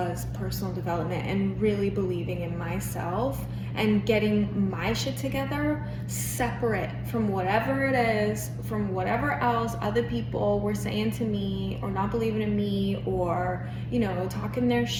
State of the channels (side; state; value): both; identical; correlation 1.00